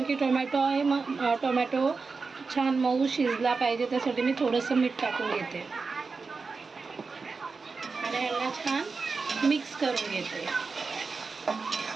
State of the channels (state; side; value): quieter; left; 4.5 dB